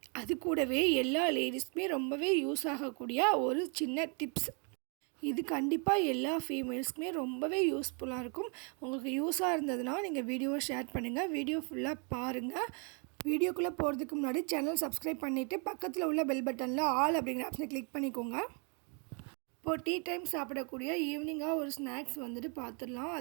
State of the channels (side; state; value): left; quieter; 37.0 dB